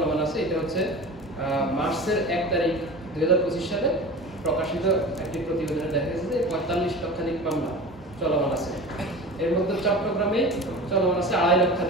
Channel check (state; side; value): normal; both; correlation 0.34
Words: আছে। এটা হচ্ছে মার্চের 1 তারিখ 2025 সালে প্রকাশিত একটি প্রতিবেদনে দেখা গেছে যে 45 লক্ষাধিক মামলা চলমান আছে। এর মধ্যে চট্টগ্রামে চলমান আছে 2.5